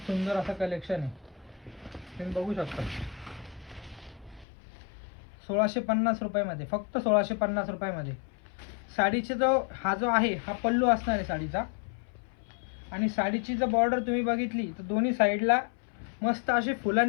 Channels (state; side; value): drops out; right; at 4.5 s